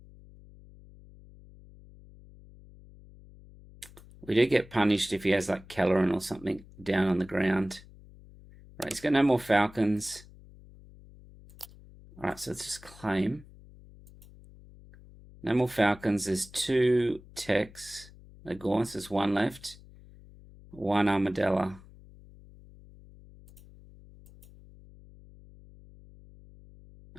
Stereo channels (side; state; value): left; noise; hum, 21 dB below the sound